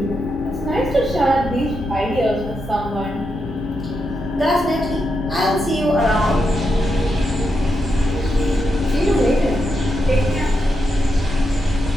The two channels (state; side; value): normal; both; correlation 0.84